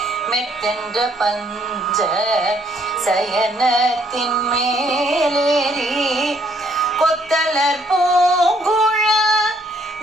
மெத்தென்ற பஞ்ச சயனத்தின் மேலேறி கொத்தலர் பூங்குழல்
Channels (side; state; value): both; normal; correlation 0.67